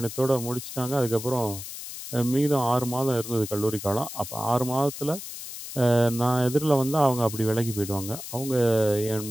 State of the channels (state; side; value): noise; left; hiss, 10 dB below the sound